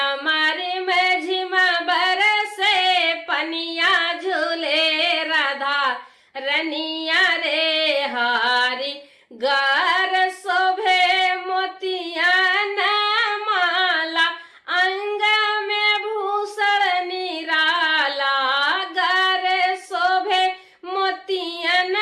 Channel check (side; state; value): both; identical; correlation 1.00